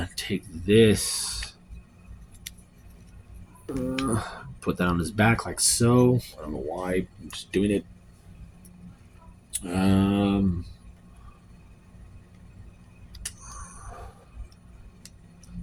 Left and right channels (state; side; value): identical; both; correlation 1.00